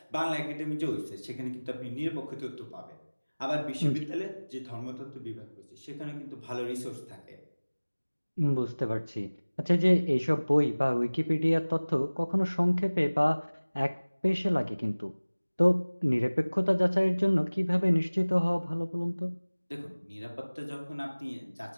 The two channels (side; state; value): both; inverted; correlation -1.00